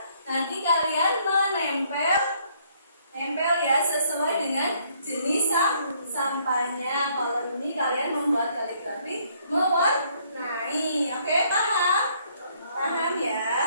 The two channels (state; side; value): inverted; both; correlation -0.66